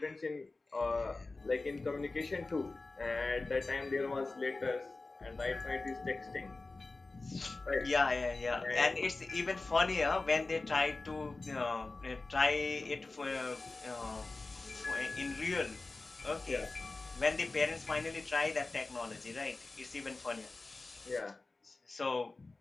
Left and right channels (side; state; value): right; quieter; 3.4 dB